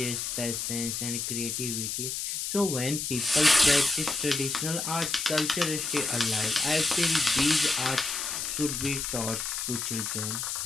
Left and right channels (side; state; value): left; noise; hiss, 3 dB below the sound